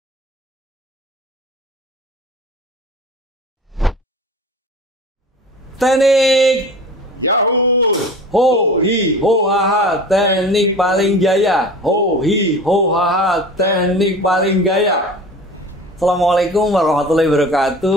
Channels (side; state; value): both; normal; correlation 0.38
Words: Teknik Yahoo! ho hi ho ha ha, teknik paling jaya. Ho hi ho ha ha, teknik paling gaya. Assalamualaikum warahmatullahi